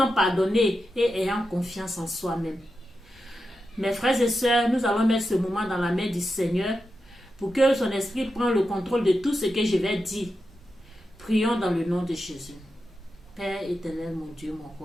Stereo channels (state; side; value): normal; both; correlation 0.89